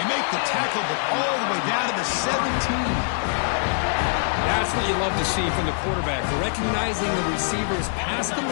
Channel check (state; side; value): silent; right; 62 dB below the other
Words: make the tackle, but all the way down to the 17. That's what you love to see from the quarterback, recognizing the receivers past the